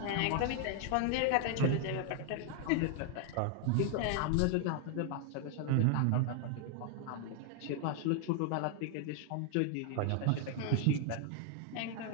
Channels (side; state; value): both; different; correlation 0.00